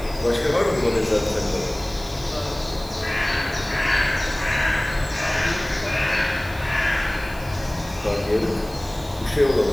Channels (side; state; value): right; noise; hiss, 20 dB below the sound